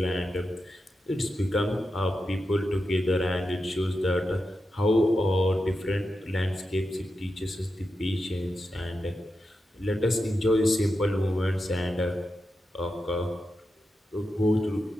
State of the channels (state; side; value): normal; both; correlation 0.89